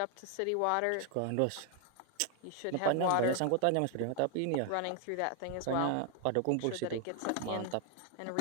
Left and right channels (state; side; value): different; both; correlation 0.00